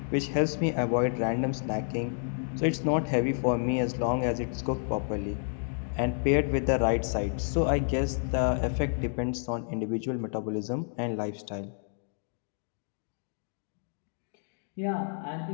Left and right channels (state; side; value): silent; right; 58 dB below the other